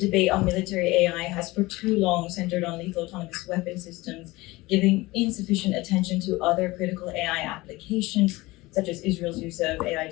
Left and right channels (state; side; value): quieter; right; 20.8 dB